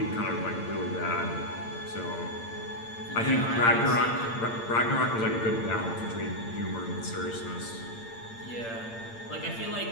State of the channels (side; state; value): right; late; 8.8 ms